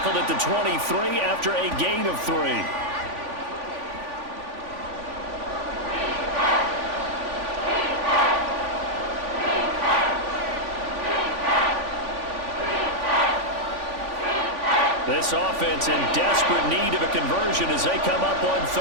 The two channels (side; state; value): left; late; 3.5 ms